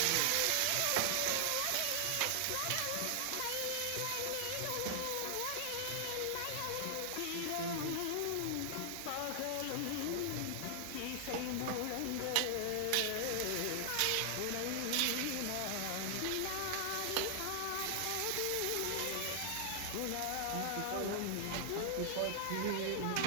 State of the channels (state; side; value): different; both; correlation 0.00